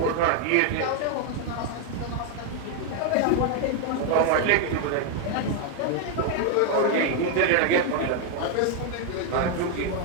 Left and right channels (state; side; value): different; both; correlation 0.01